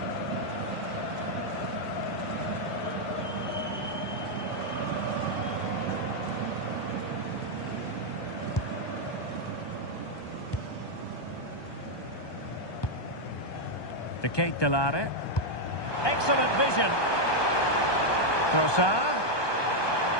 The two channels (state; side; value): late; right; 1.2 ms